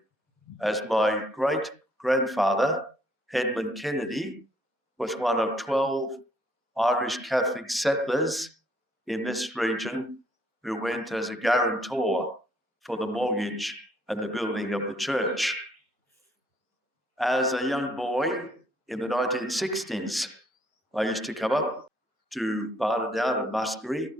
as my great-grandfather, Edmund Kennedy, was one of 12 Irish Catholic settlers in this region who went as a guarantor for the mortgage and the building of the church. As a young boy in the 1960s, I used to come up to Barnadown and Muskerry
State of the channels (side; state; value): both; normal; correlation 0.65